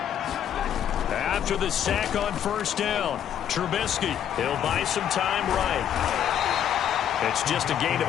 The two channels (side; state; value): right; quieter; 9.7 dB